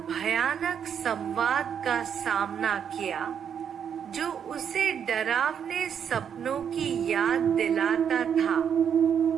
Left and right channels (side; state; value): left; quieter; 8.0 dB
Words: भयानक संवाद का सामना किया जो उसे डरावने सपनों की याद दिलाता था।